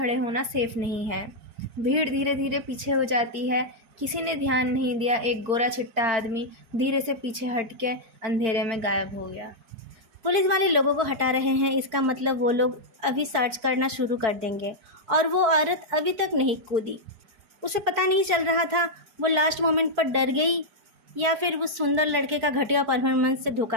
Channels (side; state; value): left; late; 4.5 ms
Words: होना सेफ नहीं है। भीड़ धीरे धीरे पीछे हो जाती है। किसी ने ध्यान नहीं दिया। एक गोरा चिट्टा आदमी धीरे से पीछे हट के अंधेरे में गायब हो गया। पुलिस वाले लोगों को हटा रहे हैं, इसका मतलब वो लोग अभी सर्च करना शुरू कर देंगे। और वो औरत अभी तक नहीं कूदी। उसे पता नहीं चल रहा था वो लास्ट मोमेंट पर डर गई या फिर उस सुंदर लड़के का घटिया परफॉर्मेंस से